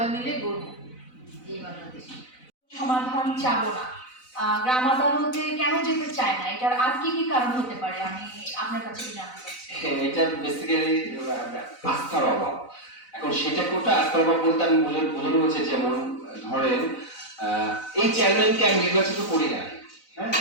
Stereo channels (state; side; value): late; right; 4.0 ms